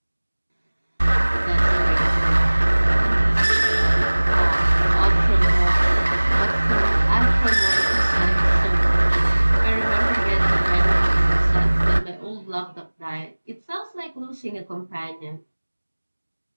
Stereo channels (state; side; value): inverted; both; correlation -1.00